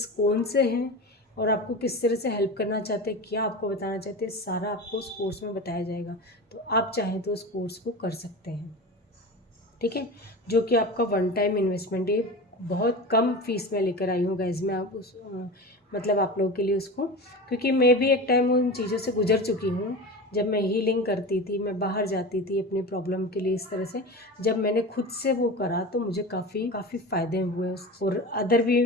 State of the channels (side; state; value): both; normal; correlation 0.29